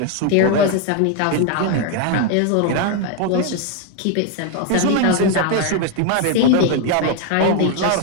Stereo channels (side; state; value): both; different; correlation 0.01